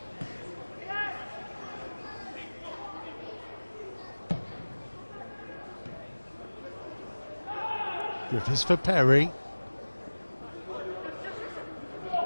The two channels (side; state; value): both; inverted; correlation -1.00